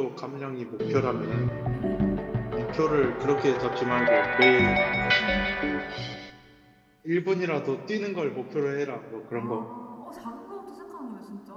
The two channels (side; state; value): both; identical; correlation 1.00